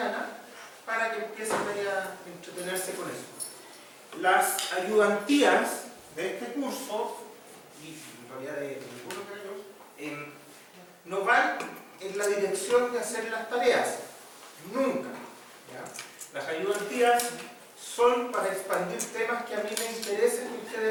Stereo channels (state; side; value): identical; both; correlation 1.00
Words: para que empiecen a entretenerse con eso. Las ayudantías de este curso, y en realidad de ninguno de ellos, no van en la dirección de hacer las tareas, nunca. ¿Ya? Las ayudantías son para expandir temas que a mí me interesen que